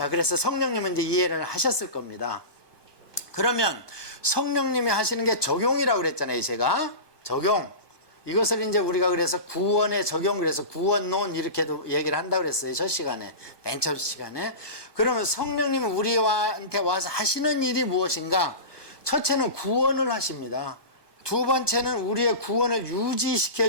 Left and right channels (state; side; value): late; right; 1.2 ms